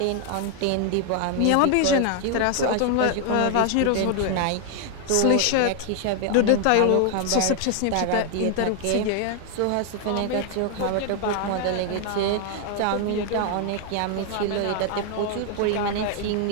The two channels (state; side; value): different; both; correlation 0.00